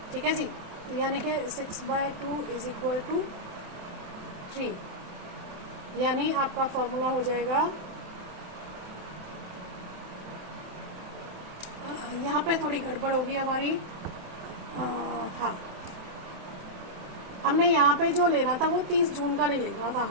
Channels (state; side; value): late; left; 28 ms